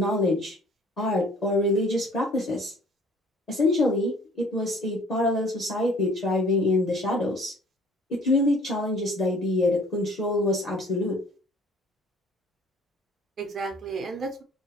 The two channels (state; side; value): normal; both; correlation 0.53